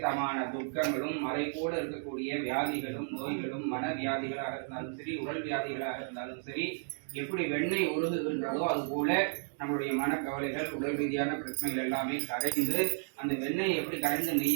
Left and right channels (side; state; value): left; silent; digital silence